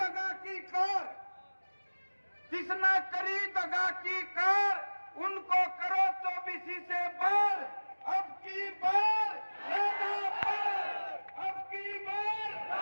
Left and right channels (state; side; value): inverted; both; correlation -1.00